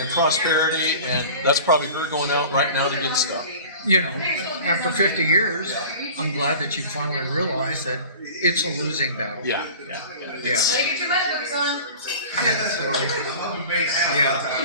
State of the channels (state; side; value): inverted; both; correlation -0.40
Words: prosperity, and that's probably her going out right now to get stuff. You know, after 50 years, I'm glad that you finally realized that it's a losing battle. Yeah. Yeah. Get your notebooks on. Yeah. So,